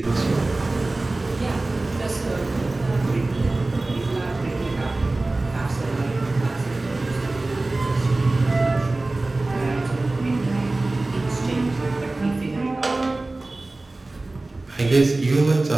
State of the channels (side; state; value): left; quieter; 3.0 dB